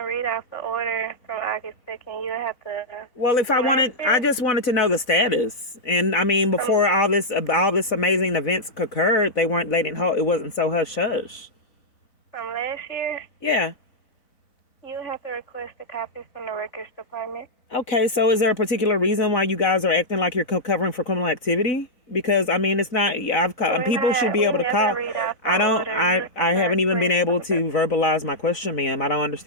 read off the order from August 2nd. You have to. Well, I just wanted to know the status. And I mean, before all this amazing events occurred, it wasn't so hush hush. From last year? Yeah. You have to request a copy from the records department. Okay, so is there a particular reason why you guys are acting like you're covering for criminal activity? Because I mean, it's not. People should be able to call. I haven't even been able to verbalize my question, ma'am. I don't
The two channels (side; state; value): right; late; 4.0 ms